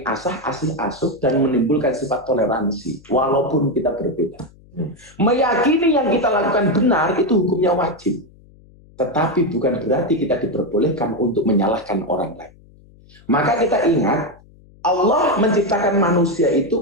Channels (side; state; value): left; noise; hum, 26 dB below the sound